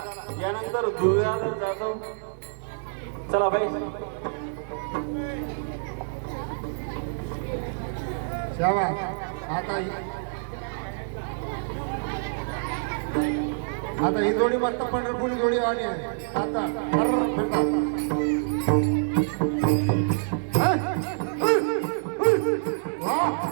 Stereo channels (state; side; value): silent; left; digital silence